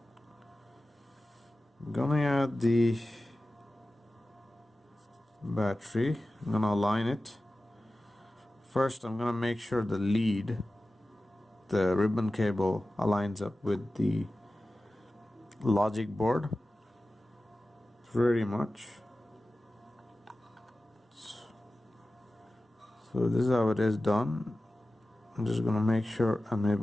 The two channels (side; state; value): both; normal; correlation 0.95